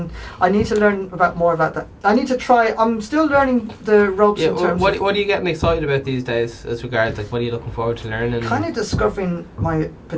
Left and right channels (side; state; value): both; identical; correlation 1.00